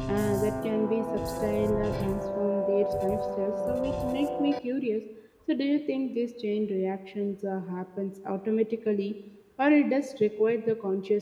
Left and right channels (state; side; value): identical; both; correlation 1.00